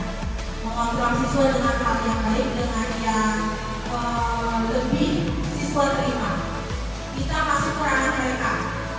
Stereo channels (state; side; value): identical; both; correlation 1.00